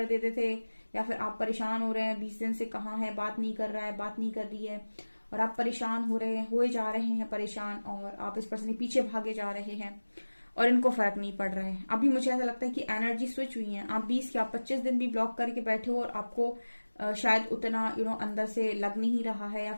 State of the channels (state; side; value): inverted; both; correlation -1.00